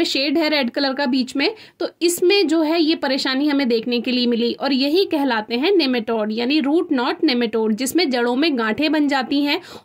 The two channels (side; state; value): both; identical; correlation 1.00